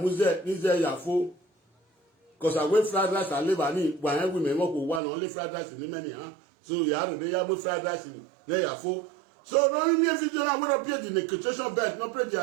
ni ya fo. Cause I wait fried rice and liver ni gba yan women mo ko wa no only fried rice ni many ha. So ya do ya mo fried rice ni ya fo. So no me video na we don't pay the negotiation bet, no pray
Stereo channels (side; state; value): left; drops out; at 5.0 s